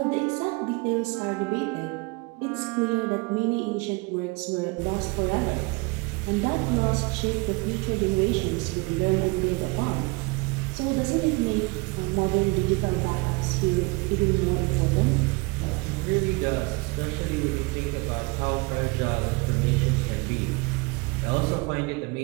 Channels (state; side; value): quieter; left; 27.4 dB